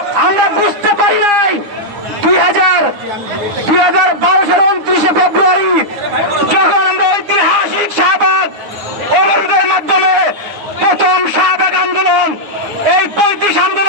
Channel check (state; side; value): late; left; 9.8 ms